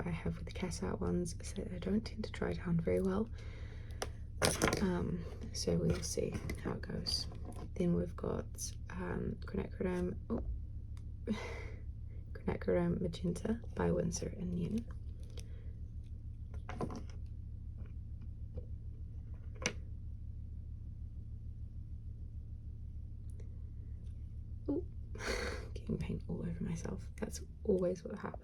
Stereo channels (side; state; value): both; identical; correlation 1.00